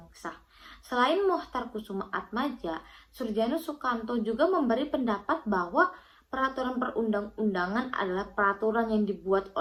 sah. Selain Mohtar Kusuma Atmaja, Surjano Sukanto juga memberi pendapat bahwa peraturan perundang-undangan adalah peraturan yang dibuat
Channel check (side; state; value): both; identical; correlation 1.00